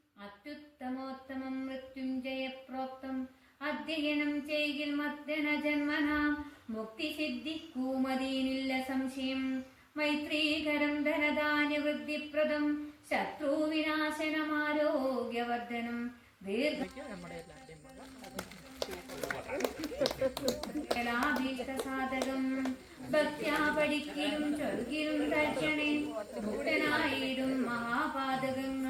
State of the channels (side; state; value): both; identical; correlation 1.00